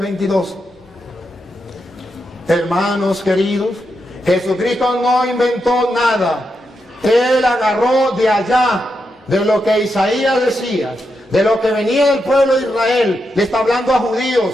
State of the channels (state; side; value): normal; both; correlation 0.85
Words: Hermanos queridos, Jesucristo no inventó nada. Él agarró de allá, de lo que Isaías decía, de lo que venía del pueblo de Israel. Le está hablando a